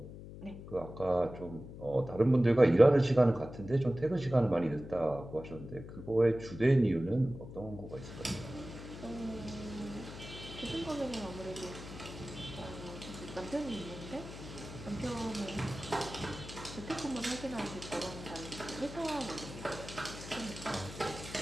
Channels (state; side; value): noise; left; hum, 12 dB below the sound